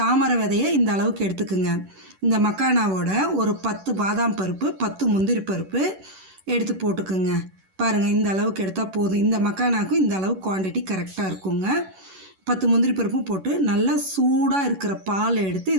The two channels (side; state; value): left; late; 11 ms